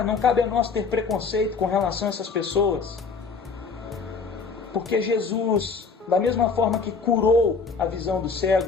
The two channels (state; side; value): quieter; right; 4.9 dB